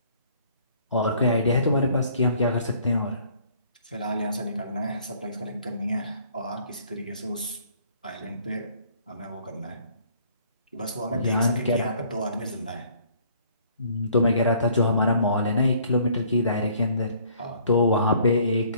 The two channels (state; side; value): inverted; both; correlation -0.59